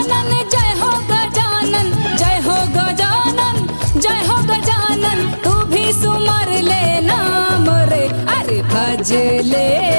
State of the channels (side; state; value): both; inverted; correlation -1.00